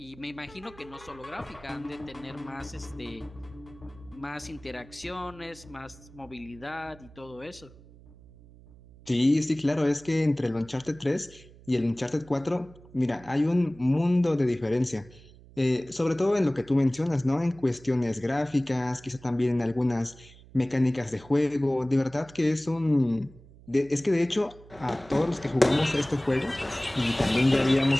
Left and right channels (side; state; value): right; noise; hum, 22 dB below the sound